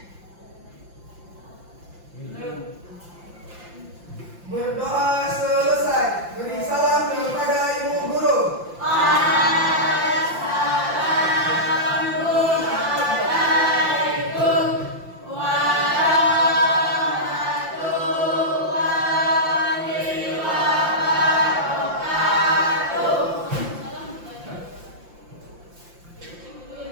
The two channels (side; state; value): left; late; 5.8 ms